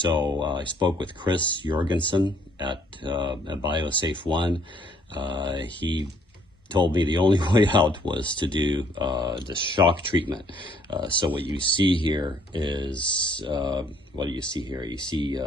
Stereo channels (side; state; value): both; normal; correlation 0.64